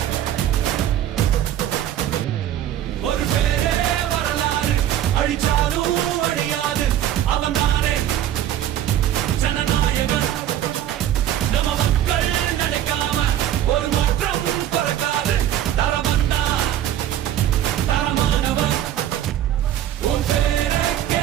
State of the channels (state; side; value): quieter; left; 11.5 dB